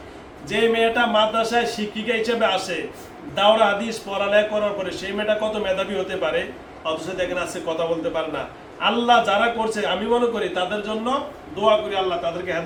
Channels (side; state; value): both; identical; correlation 1.00